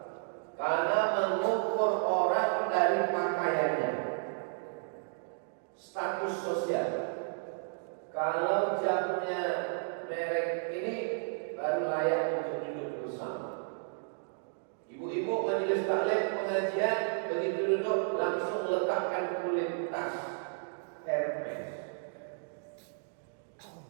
karena mengukur orang dari pakaiannya, status sosial. Kalau jamnya merek ini baru layak untuk duduk bersama. Ibu-ibu majelis taklim pengajian begitu duduk langsung letakkan kulit tas Hermes,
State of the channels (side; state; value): left; silent; digital silence